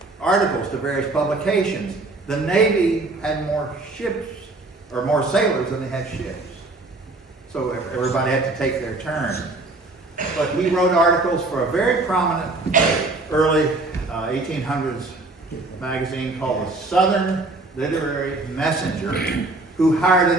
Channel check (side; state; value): left; quieter; 3.1 dB